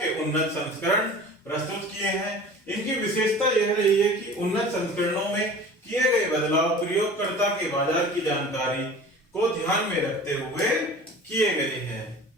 उन्नत संस्करण प्रस्तुत किए हैं। इनकी विशेषता यह रही है कि उन्नत संस्करणों में किए गए बदलाव प्रयोगकर्ता के बाजार की जानकारी को ध्यान में रखते हुए किए गए हैं।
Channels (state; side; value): normal; both; correlation 0.41